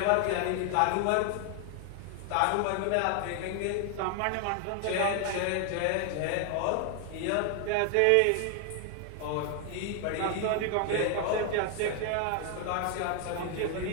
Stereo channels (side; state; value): both; different; correlation 0.00